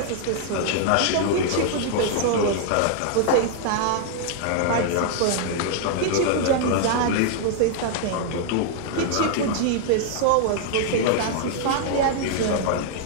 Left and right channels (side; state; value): both; different; correlation -0.01